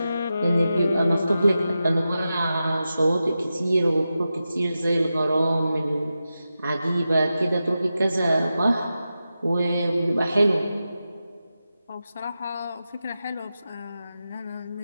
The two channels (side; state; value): both; inverted; correlation -0.91